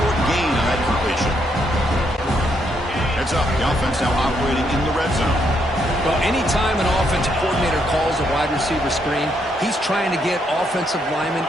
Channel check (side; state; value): both; normal; correlation 0.75